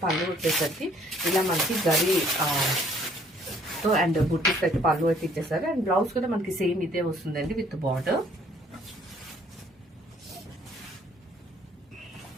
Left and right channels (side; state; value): both; normal; correlation 0.61